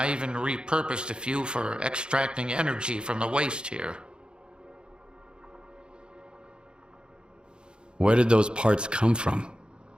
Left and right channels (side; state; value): left; late; 0.051 ms